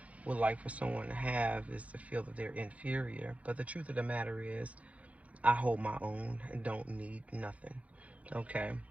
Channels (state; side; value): late; left; 0.066 ms